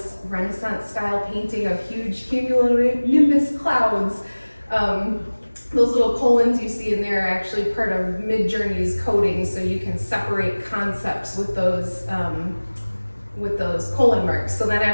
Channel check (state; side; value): inverted; both; correlation -1.00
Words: Renaissance style painting of huge cumulonimbus clouds. Those little colons you see in there are actually part of Midjourney's coding, so you can separate concepts with those colon marks. So then